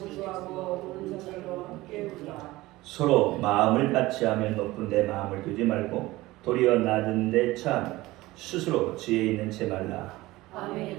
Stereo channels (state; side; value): quieter; left; 18.9 dB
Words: 서로 마음을 같이 하며 높은 데 마음을 두지 말고 도리어 낮은 데 처하며 스스로 지혜 있는 채 말라.